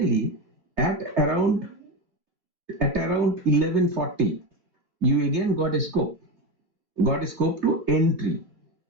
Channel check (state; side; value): late; left; 3.3 ms